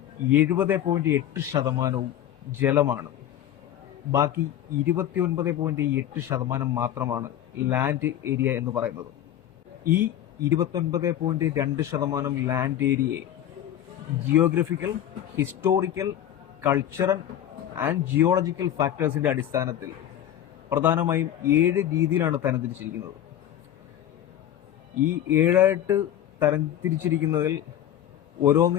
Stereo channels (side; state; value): right; quieter; 11.2 dB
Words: 70.8% ജലമാണ്. ബാക്കി 29.8% മാത്രമാണ് ലാൻഡ് ഏരിയ എന്ന് പറയുന്നത്. ഈ 29.2% ലാൻഡ് ഏരിയയെ geographical, historical, cultural and geological ഫാക്ടേഴ്സിന്റെ അടിസ്ഥാനത്തിൽ പ്രധാനമായും 7 രീതിയിലാണ് തരംതിരിച്ചിരിക്കുന്നത്. ഈ 7 തരംതിരിച്ചിരിക്കുന്നതിൽ